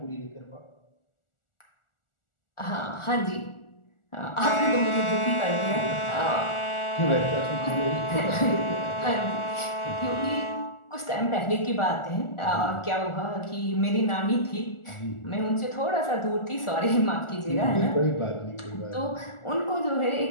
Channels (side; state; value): right; late; 1.4 ms